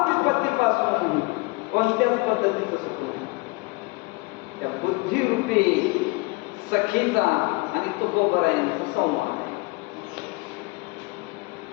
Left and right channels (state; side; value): quieter; right; 25.8 dB